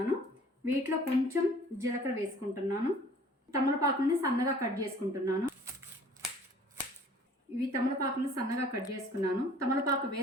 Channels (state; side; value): normal; both; correlation 0.51